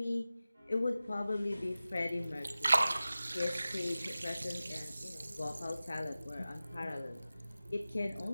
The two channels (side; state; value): both; inverted; correlation -0.96